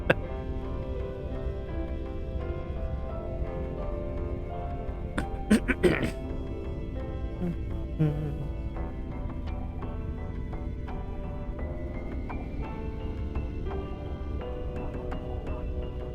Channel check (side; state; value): both; identical; correlation 1.00